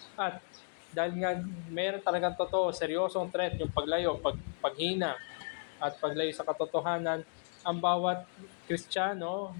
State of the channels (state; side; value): silent; right; 55 dB below the other